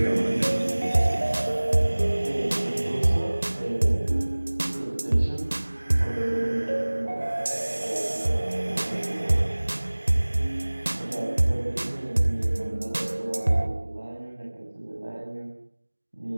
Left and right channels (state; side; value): inverted; both; correlation -1.00